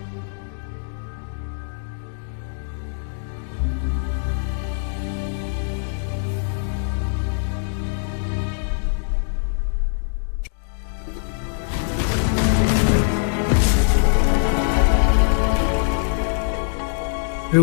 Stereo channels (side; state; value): right; silent; digital silence